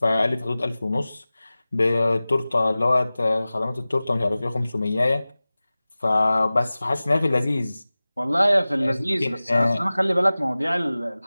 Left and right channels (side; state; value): both; inverted; correlation -0.98